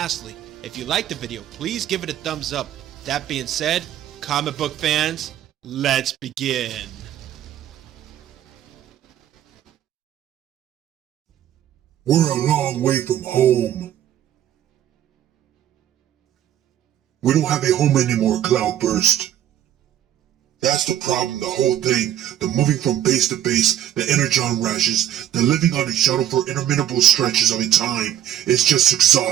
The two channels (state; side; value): quieter; left; 11.3 dB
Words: if you like the video, please give it a thumbs up. That being said, comic book fans, let's begin. We're a long way from home. We don't have a home anymore, Cloudburst. That's the problem, the whole thing. The moving from base to base, the energon rashes, the living on a shuttle for interminable stretches of a time. It's just